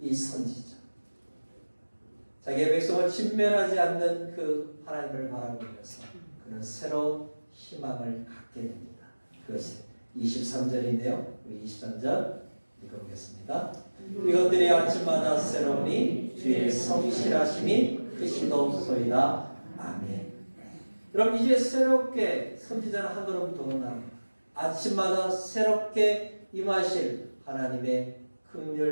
이 선지자, 자기의 백성을 진멸하지 않는 그 하나님을 바라보면서 그는 새로운 희망을 갖게 됩니다. 그것이 23절인데요. 우리 23절 읽어보겠습니다. 이것들이 아침마다 새로우니 주의 성실하심이 크시도소이다. 아멘. 그럼 이제 새롭게 선지자는 한 걸음 더 나갑니다. 아침마다 새롭게 임하실 하나님의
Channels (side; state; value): both; inverted; correlation -1.00